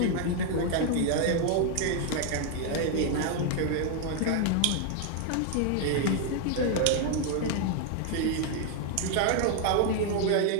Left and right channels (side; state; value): both; different; correlation 0.00